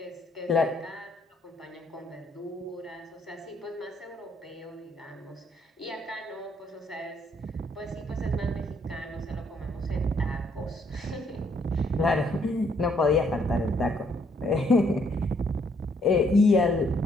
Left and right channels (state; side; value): normal; both; correlation 0.69